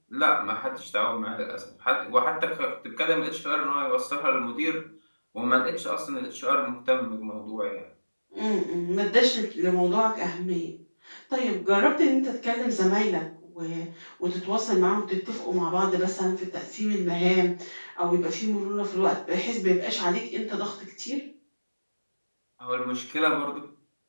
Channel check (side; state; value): both; inverted; correlation -1.00